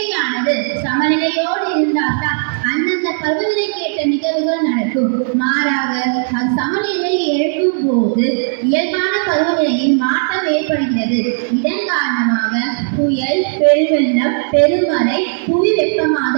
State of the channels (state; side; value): silent; left; digital silence